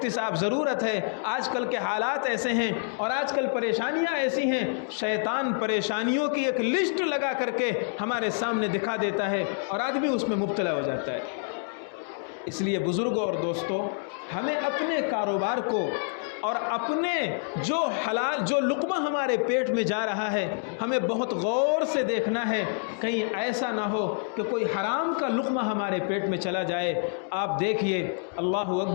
صاحب ضرورت ہے، آج کل کے حالات ایسے ہیں اور آج کل پریشانیاں ایسی ہیں، شیطان پریشانیوں کی ایک لسٹ لگا کر کے ہمارے سامنے دکھا دیتا ہے اور آدمی اس میں مبتلا ہو جاتا ہے۔ اس لیے بزرگوں اور دوستوں، ہمیں اپنے کاروبار کو اور اپنے جو حلال جو لقمہ ہمارے پیٹ میں جا رہا ہے ہمیں بہت غور سے دیکھنا ہے، کہیں ایسا نہ ہو کہ کوئی حرام کا لقمہ ہمارے پیٹ میں چلا جائے۔ آپ دیکھیے، اللہ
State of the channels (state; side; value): silent; right; 60 dB below the other